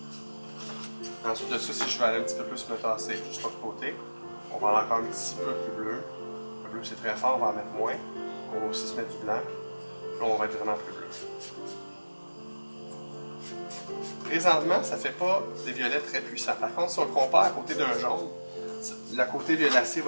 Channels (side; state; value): both; inverted; correlation -1.00